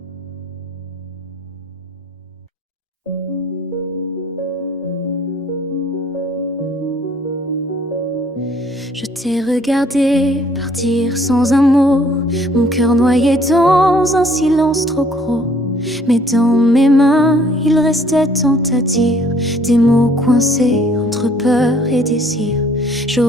Je t'ai regardé partir sans un mot, mon cœur noyé dans un silence trop gros. Mais dans mes mains, il restait tant à dire, des mots coincés entre peur et désir.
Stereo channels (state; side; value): normal; both; correlation 0.60